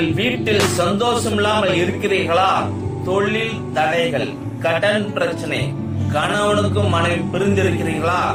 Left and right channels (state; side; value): identical; both; correlation 1.00